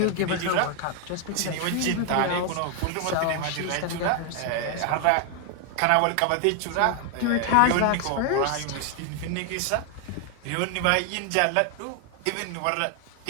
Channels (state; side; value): different; both; correlation 0.00